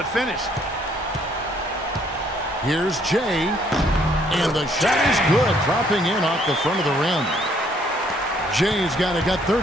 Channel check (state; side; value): normal; both; correlation 0.65